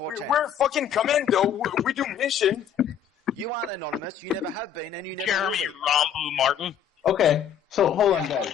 We're fucking commando. We do mission. You aren't anonymous. You never have been, and you never will be. Rambo Martin. Okay, so hold on,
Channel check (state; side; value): quieter; right; 8.6 dB